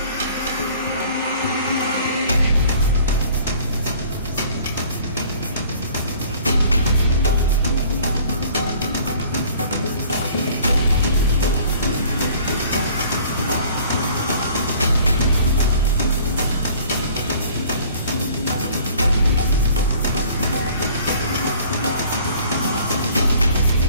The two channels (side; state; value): both; inverted; correlation -0.52